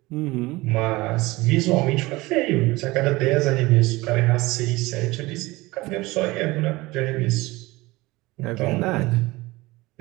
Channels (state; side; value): quieter; left; 20.9 dB